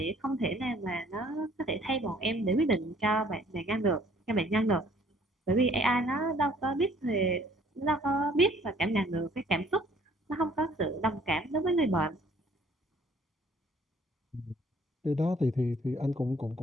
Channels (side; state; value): both; normal; correlation 0.59